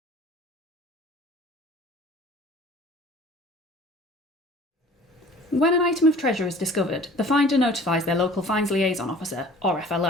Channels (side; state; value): both; normal; correlation 0.47